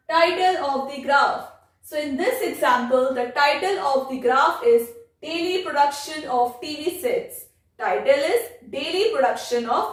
title of the graph. So in this example, the title of the graph is Daily Production of TV Sets. Title is Daily Production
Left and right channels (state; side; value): identical; both; correlation 1.00